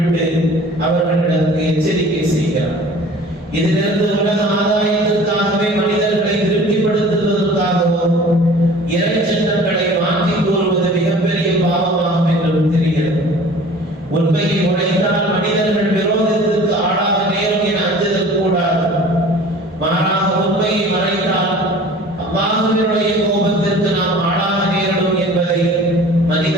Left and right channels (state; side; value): normal; both; correlation 0.45